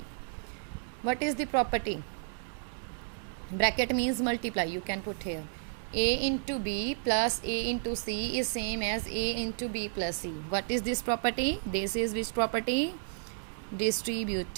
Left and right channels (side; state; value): left; silent; digital silence